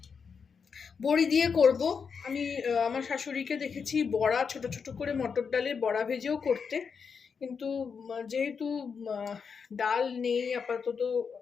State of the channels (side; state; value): right; quieter; 6.0 dB